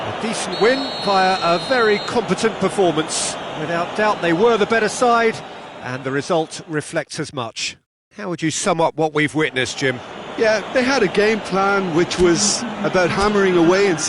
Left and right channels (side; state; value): both; identical; correlation 1.00